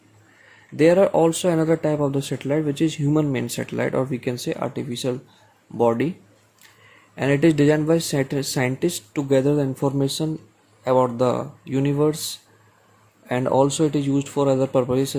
There are also another type of the satellite which is human made satellite, or we can say artificial body, and it is designed by scientists to gather the information about the universe, and also it is used for other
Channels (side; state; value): both; identical; correlation 1.00